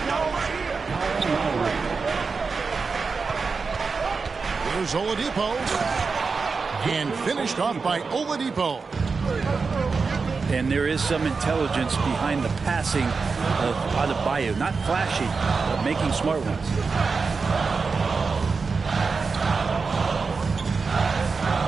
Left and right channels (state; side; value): quieter; left; 4.7 dB